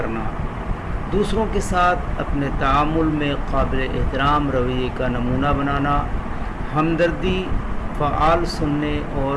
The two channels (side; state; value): both; identical; correlation 1.00